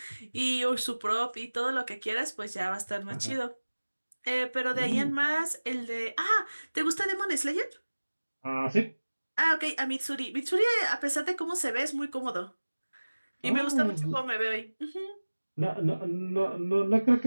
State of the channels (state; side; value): inverted; both; correlation -1.00